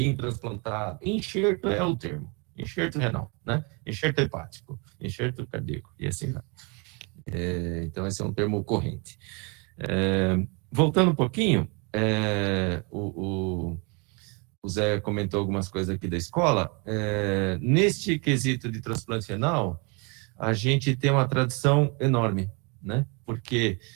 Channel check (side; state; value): left; quieter; 32.0 dB